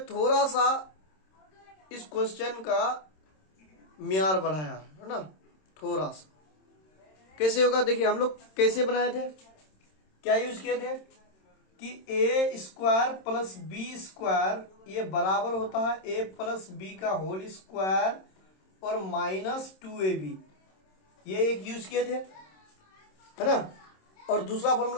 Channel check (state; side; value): late; right; 26 ms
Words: थोड़ा सा इस क्वेश्चन का म्यार बढ़ाया है ना, थोड़ा सा। कैसे होगा देखिए, हम लोग कैसे बनाए थे, क्या यूज किए थे कि A square plus B square ये बराबर होता है ए प्लस बी का होल स्क्वायर और -2ab, ये एक यूज किए थे, है ना। और दूसरा